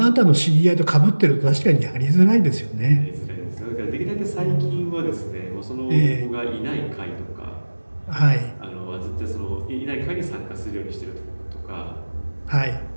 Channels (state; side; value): inverted; both; correlation -1.00